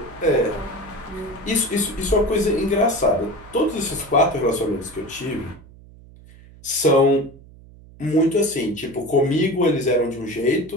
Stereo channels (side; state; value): right; noise; hum, 22 dB below the sound